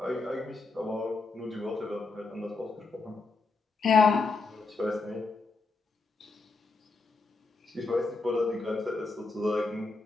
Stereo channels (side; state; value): right; quieter; 3.8 dB